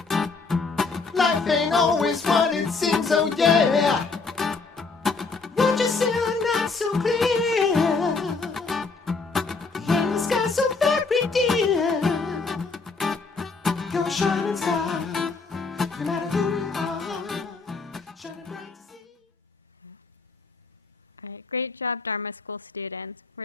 life ain't always what it seems, oh yeah. Won't you see the night so clear, and the sky so very dear? You're a shining star, no matter who you are, shining bright to see. All right, great job, Dharma School students.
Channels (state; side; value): quieter; right; 4.2 dB